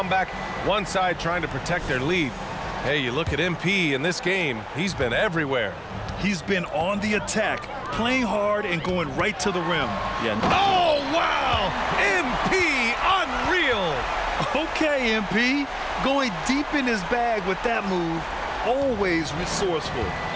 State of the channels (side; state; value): both; identical; correlation 1.00